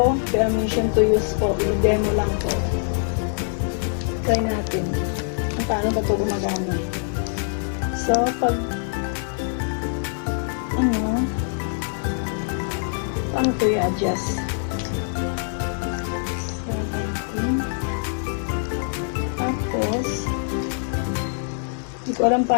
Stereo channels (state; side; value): silent; right; digital silence